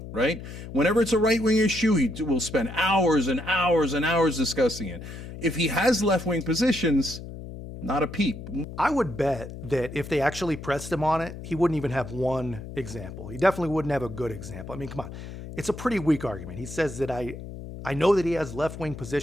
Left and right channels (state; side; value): noise; left; hum, 11 dB below the sound